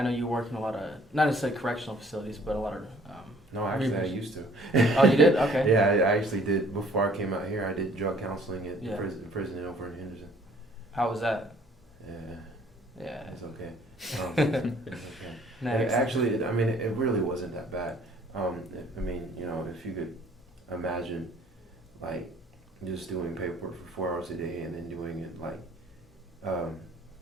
know you work in a lot of, not necessarily correctional facilities, but a lot of. No, actually, I used to. Oh, you did? Okay. Yeah, I actually did. Before I came out here, I did drug counseling at prison over in Henderson. How was that? Yeah. Yeah. It's okay. It's okay. Next. Actually, it really wasn't that bad. If you could imagine, like, just doing paperwork for 4 hours a day and then doing it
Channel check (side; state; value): both; normal; correlation 0.57